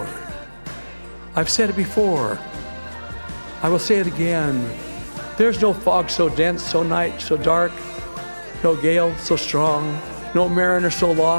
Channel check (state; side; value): inverted; both; correlation -1.00